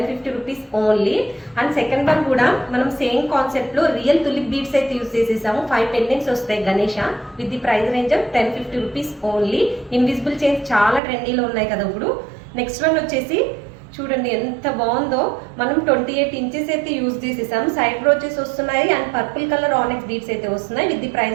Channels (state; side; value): drops out; left; at 11.0 s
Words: rupees only. And second one కూడా మనం సేమ్ కాన్సెప్ట్ లో రియల్ తులిప్ బీడ్స్ అయితే యూజ్ చేసేసాము. 5 పెండెంట్స్ వస్తాయి Ganesha with the price range of 1050 rupees only. Invisible chains చాలా ట్రెండీలో ఉన్నాయి కదా ఇప్పుడు. నెక్స్ట్ వన్ వచ్చేసి చూడండి ఎంత బాగుందో. మనం 28 ఇంచెస్ అయితే యూజ్ చేసేసాం. సైడ్ బ్రోచెస్ వస్తున్నాయి అండ్ పర్పుల్ కలర్ ఆనెక్స్ బీడ్స్ అయితే వస్తున్నాయి with the